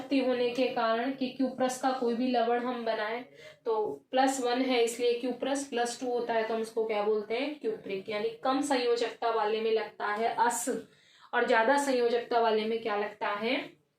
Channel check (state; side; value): identical; both; correlation 1.00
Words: होने के कारण कि क्यूप्रस का कोई भी लवण हम बनाए तो +1 है इसलिए क्यूप्रस, +2 होता है तो हम उसको क्या बोलते हैं, क्यूप्रिक। यानी कम संयोजकता वाले में लगता है अस और ज्यादा संयोजकता वाले में क्या लगता है,